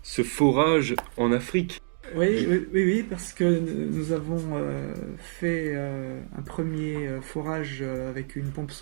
forage en Afrique. Oui, parce que nous avons fait un premier forage avec une pompe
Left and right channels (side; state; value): left; silent; digital silence